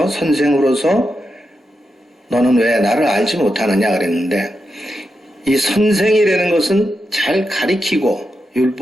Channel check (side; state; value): both; normal; correlation 0.87